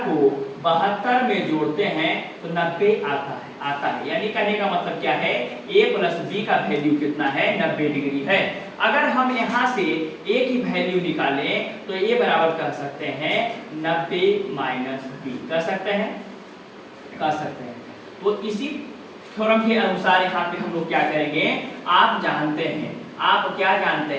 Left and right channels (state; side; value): identical; both; correlation 1.00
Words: को 72 में जोड़ते हैं तो 90 आता है। यानी कहने का मतलब क्या है, a प्लस b का वैल्यू कितना है, 90 डिग्री है। अगर हम यहाँ से a की वैल्यू निकालें तो a बराबर कह सकते हैं 90 माइनस b, कह सकते हैं। तो इसी थ्योरम के अनुसार यहाँ पे हम लोग क्या करेंगे, आप क्या जानते